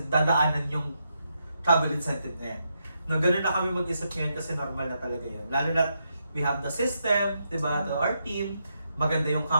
dadaanan yung travel incentive na yan. No, ganun na kami mag-isip ngayon kasi normal na talaga yan. Lalo na we have the system, diba, to our team, maganda yung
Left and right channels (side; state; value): both; inverted; correlation -0.82